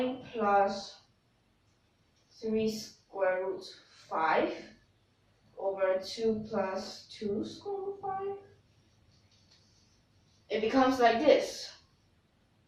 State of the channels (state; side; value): identical; both; correlation 1.00